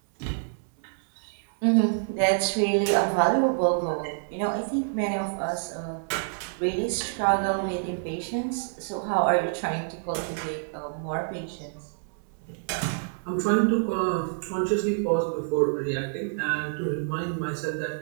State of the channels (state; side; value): silent; left; 60 dB below the other